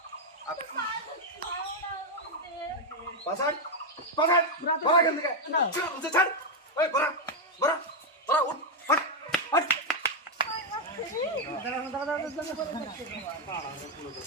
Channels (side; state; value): both; normal; correlation 0.02